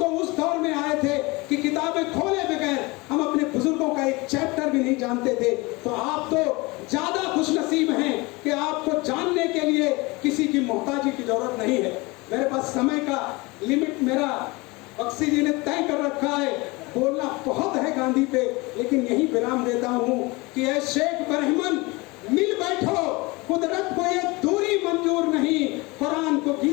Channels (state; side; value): quieter; right; 24.3 dB